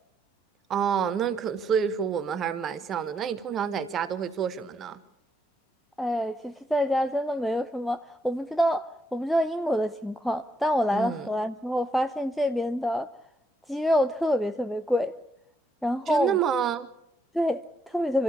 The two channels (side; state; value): both; normal; correlation 0.77